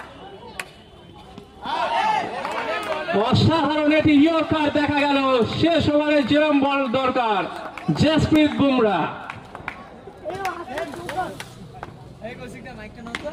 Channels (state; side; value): identical; both; correlation 1.00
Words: অসাধারণ এটি ইয়র্কার দেখা গেল। শেষ ওভারে যেরম বল দরকার, জসপ্রীত বুমরা।